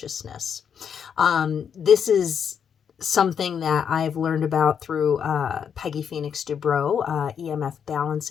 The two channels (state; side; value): quieter; right; 7.6 dB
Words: This is something that I've learned about through Peggy Phoenix Dubrow, EMF